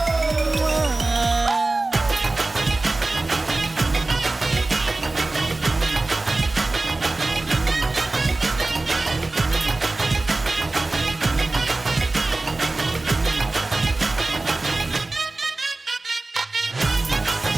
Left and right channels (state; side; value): quieter; left; 3.1 dB